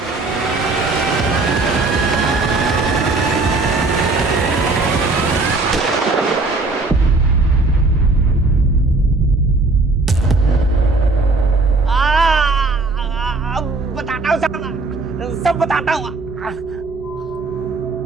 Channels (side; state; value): left; quieter; 3.4 dB